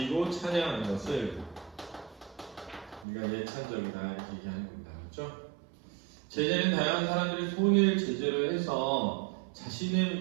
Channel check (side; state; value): left; drops out; at 3.1 s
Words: 찬양하는 것을 우리가 예찬적이다 이렇게 얘기하는 겁니다. 그렇죠? 제재는 다양한 사람들의 손을 제재로 해서